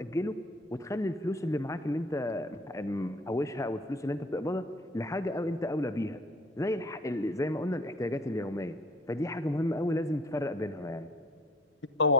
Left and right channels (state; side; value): normal; both; correlation 0.55